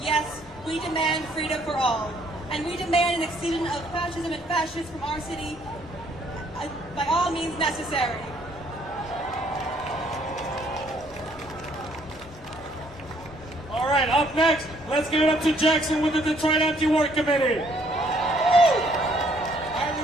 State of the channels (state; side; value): normal; both; correlation 0.65